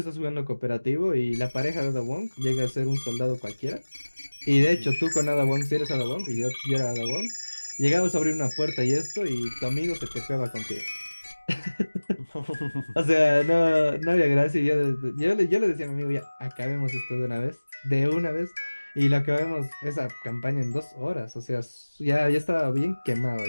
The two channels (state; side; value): inverted; both; correlation -1.00